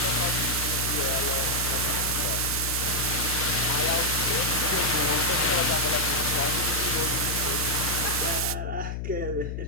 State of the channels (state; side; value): noise; left; hum, 4 dB below the sound